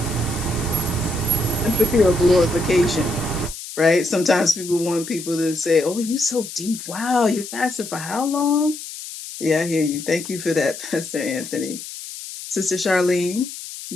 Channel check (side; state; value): left; noise; hiss, 11 dB below the sound